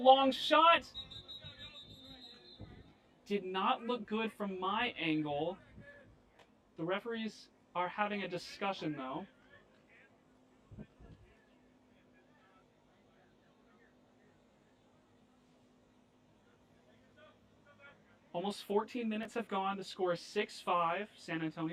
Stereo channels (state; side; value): identical; both; correlation 1.00